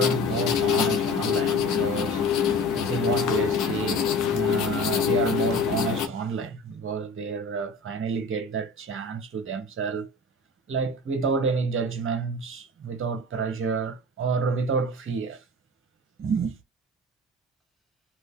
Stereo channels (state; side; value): normal; both; correlation 0.38